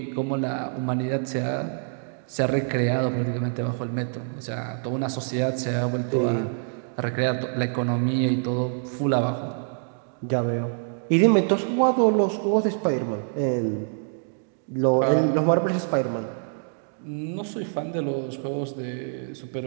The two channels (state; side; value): silent; left; 61 dB below the other